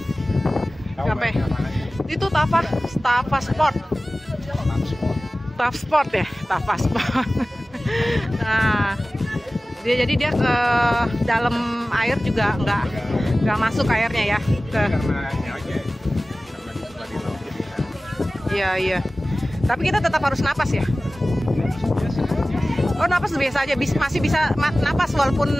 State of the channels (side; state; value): both; normal; correlation 0.97